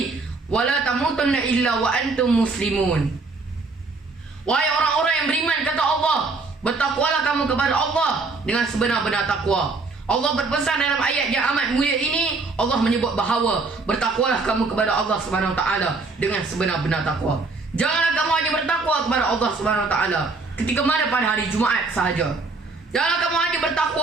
wa la tamutunna illa wa antum muslimun. Wahai orang-orang yang beriman, kata Allah, bertakwalah kamu kepada Allah dengan sebenar-benar takwa. Allah berpesan dalam ayat yang amat mulia ini, Allah menyebut bahawa bertakwalah kamu kepada Allah Subhanahu wa taala dengan sebenar-benar takwa. Janganlah kamu hanya bertakwa kepada Allah Subhanahu wa taala ketika mana pada hari Jumaat sahaja. Janganlah kamu hanya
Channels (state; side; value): quieter; left; 3.9 dB